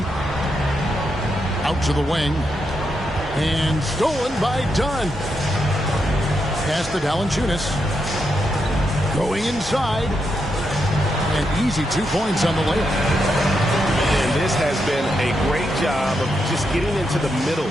Out to the wing. And stolen by Dunn. Pass to Valanciunas. Going inside. And easy 2 points on the layup. And this has been a great job of just getting into the middle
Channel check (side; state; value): both; normal; correlation 0.83